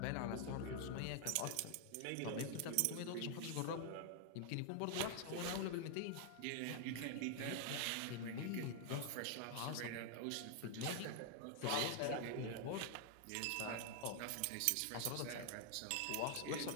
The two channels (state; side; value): different; both; correlation 0.00